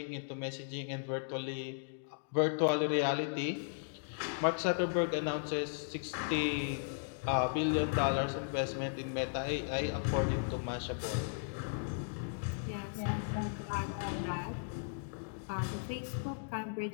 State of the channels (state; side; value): silent; right; digital silence